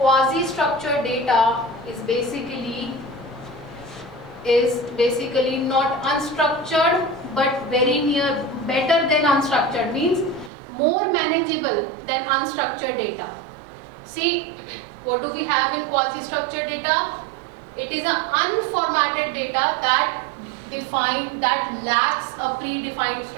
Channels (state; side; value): drops out; left; at 10.5 s